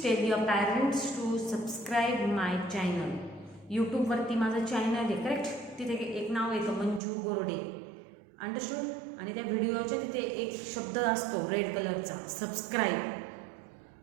tell your parents to subscribe my channel. YouTube वरती माझं channel आहे, correct? तिथे एक नाव येतं Manju Gorde, understood? आणि त्या व्हिडिओच्या तिथे एक शब्द असतो रेड कलरचा, सबस्क्राईब.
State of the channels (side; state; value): left; drops out; at 7.0 s